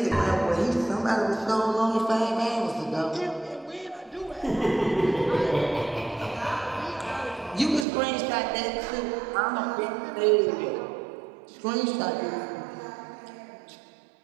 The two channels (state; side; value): drops out; left; at 7.9 s